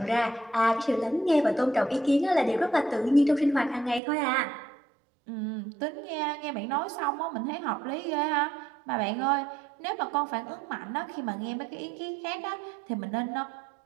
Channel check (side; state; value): left; drops out; at 4.0 s